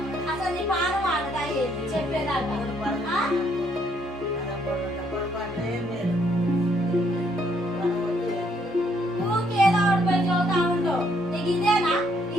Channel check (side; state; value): both; normal; correlation 0.69